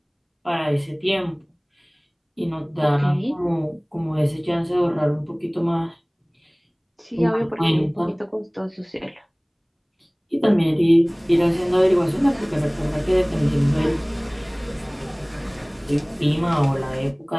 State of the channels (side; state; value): both; identical; correlation 1.00